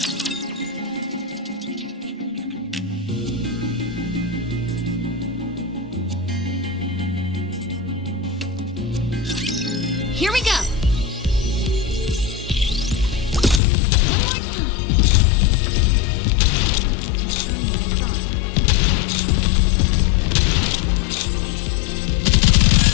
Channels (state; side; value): drops out; right; at 13.6 s